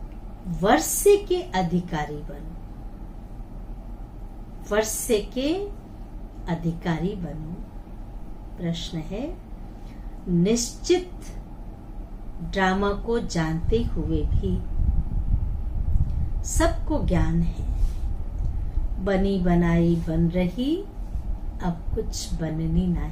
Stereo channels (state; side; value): identical; both; correlation 1.00